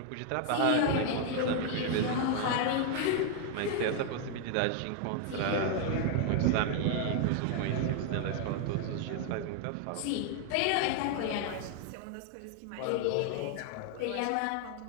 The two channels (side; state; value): both; different; correlation 0.00